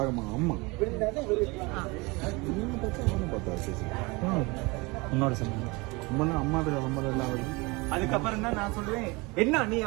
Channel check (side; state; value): left; quieter; 25.6 dB